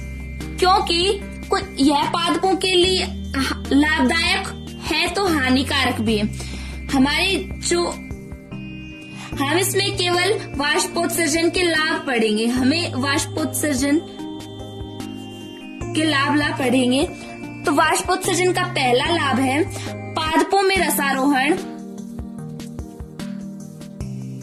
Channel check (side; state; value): both; identical; correlation 1.00